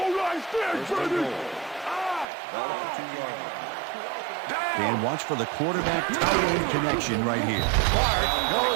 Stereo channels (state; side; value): drops out; left; at 2.2 s